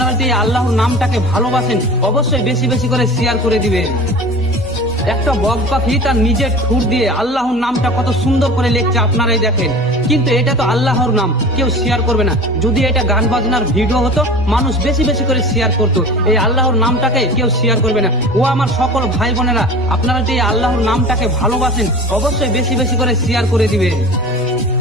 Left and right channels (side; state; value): right; noise; hum, 24 dB below the sound